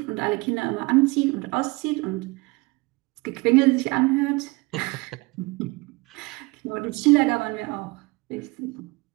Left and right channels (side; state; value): left; quieter; 24.9 dB